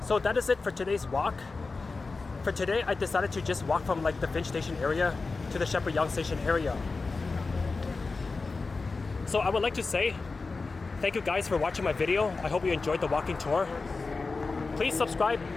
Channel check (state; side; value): quieter; right; 4.0 dB